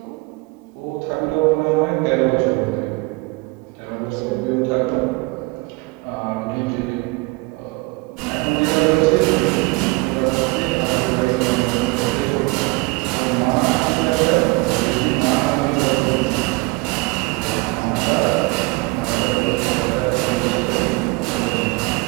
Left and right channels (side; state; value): left; quieter; 25.3 dB